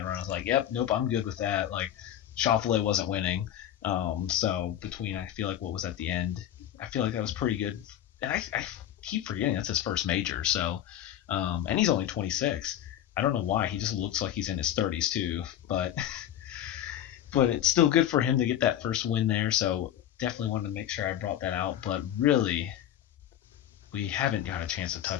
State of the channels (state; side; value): quieter; right; 11.2 dB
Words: run. I was like, yep, nope, I'm good with that. Like, Schauffele wasn't winning. So between, I feel like what was at the end, I feel like that was pretty good. And I keep forgetting that's his first major. So, and he's only 26. I don't know why. He just looks like he's in his 30s too. But it's still good for him to get that first win there. So definitely wanted to make sure I brought that out. But really, we haven't got a chance to